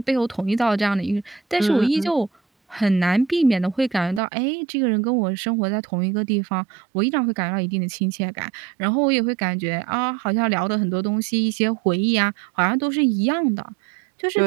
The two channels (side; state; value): left; drops out; at 4.2 s